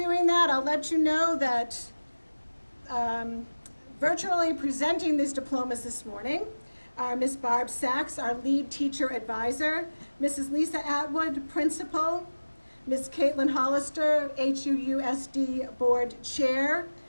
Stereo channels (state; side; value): inverted; both; correlation -1.00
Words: that, I'll let you know that virtually presenting these diplomas this morning are Ms. Barb Sachs, our lead teacher advisor, Mrs. Lisa Atwood, principal, Ms. Caitlin Hollister, HUUSD board chair,